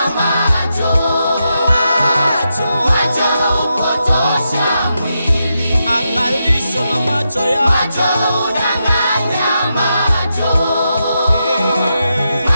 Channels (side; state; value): both; inverted; correlation -0.85